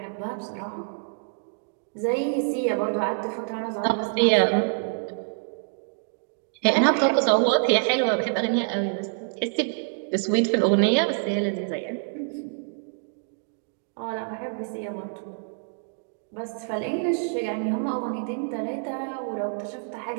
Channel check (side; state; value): left; silent; 60 dB below the other